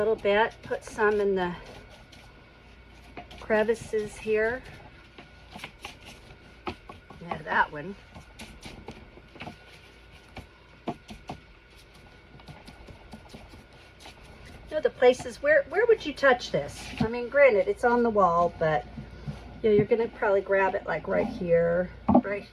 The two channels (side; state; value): both; identical; correlation 1.00